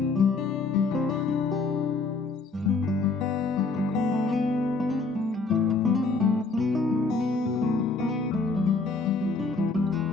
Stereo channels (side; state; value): right; quieter; 4.0 dB